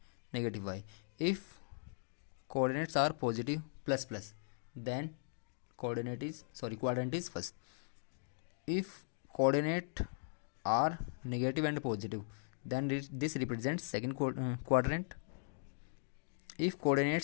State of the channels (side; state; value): right; silent; digital silence